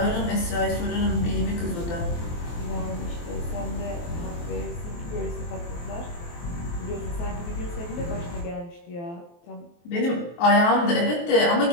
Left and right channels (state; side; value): late; right; 23 ms